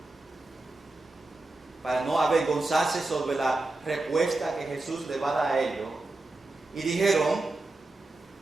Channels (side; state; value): left; quieter; 3.0 dB